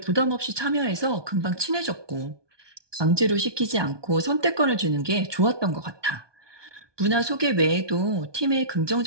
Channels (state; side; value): late; left; 1.2 ms